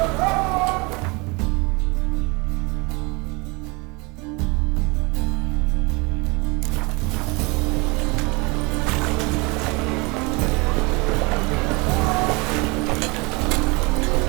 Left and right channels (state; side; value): quieter; left; 27.3 dB